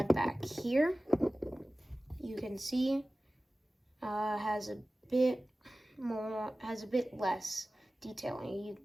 back here. You can see has a bit less detailing. You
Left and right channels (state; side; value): normal; both; correlation 0.97